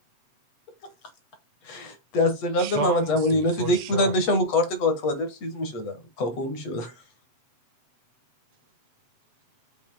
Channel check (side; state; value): right; late; 7.9 ms